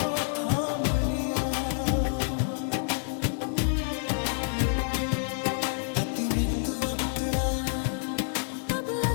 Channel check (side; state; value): right; silent; digital silence